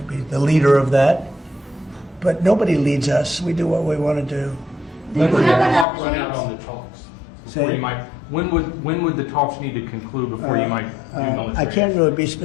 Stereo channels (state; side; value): drops out; right; at 5.9 s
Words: be the leader of that. But nobody leads us. We do what we want to do. When you would the have an clock run update? out on the talks? Say- Before you might, when would the talks need to conclude before you might do military? I can't really be